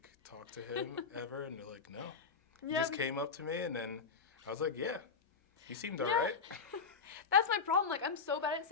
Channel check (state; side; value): quieter; right; 5.3 dB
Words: talk to him ever? And they're like, no. He Yeah, just came up to me, and then I was like, yeah, he seemed Yeah. alright. That's my problem. Like, I'm so bad at